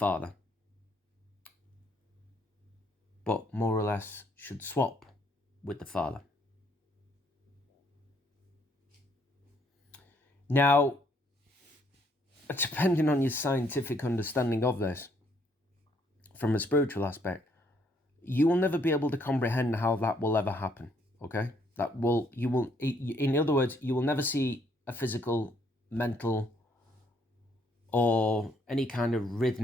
but more or less should swap with the Father. Now, depending on your scientific understanding of this, from a spiritual aspect, you will never be able to comprehend how that will ever happen, okay? In other words, you will never see a physical, mental, or any kind of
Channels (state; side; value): normal; both; correlation 0.69